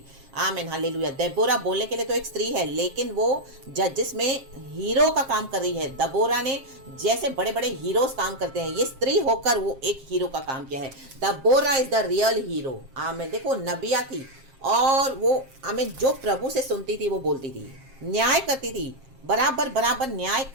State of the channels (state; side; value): late; left; 7.5 ms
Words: Amen hallelujah. दबोरा बोलने के लिए तो एक स्त्री है, लेकिन वो जजेस में हीरो का काम कर रही है। दबोरा ने जैसे बड़े बड़े हीरोज काम करते हैं, ये स्त्री होकर वो एक हीरो का काम किया है। दबोरा इज द रियल हीरो। आमेन। देखो नबिया थी, और वो आमीन जो प्रभु से सुनती थी वो बोलती थी, न्याय करती थी। बराबर बराबर न्याय